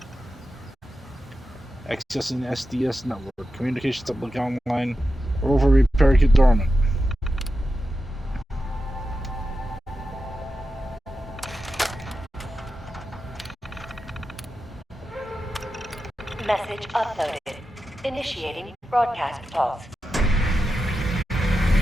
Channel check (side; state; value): both; normal; correlation 0.90